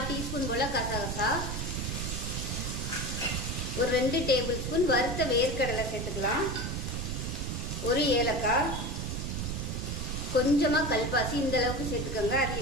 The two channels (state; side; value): noise; right; rumble, 3 dB below the sound